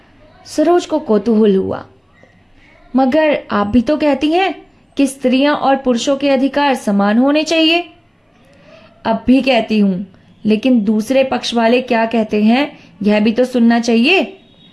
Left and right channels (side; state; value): both; identical; correlation 1.00